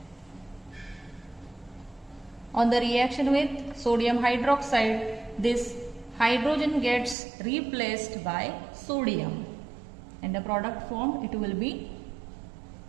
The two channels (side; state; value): left; drops out; at 7.2 s